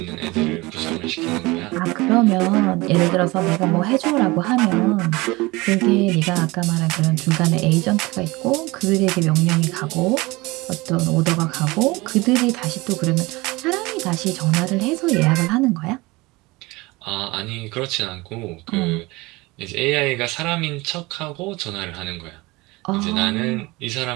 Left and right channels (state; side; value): quieter; left; 22.5 dB